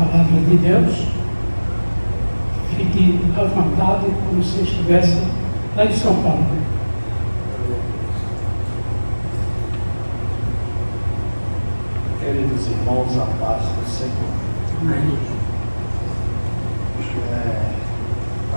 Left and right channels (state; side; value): inverted; both; correlation -1.00